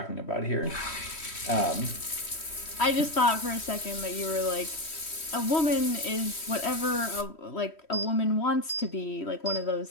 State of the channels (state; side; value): late; right; 3.1 ms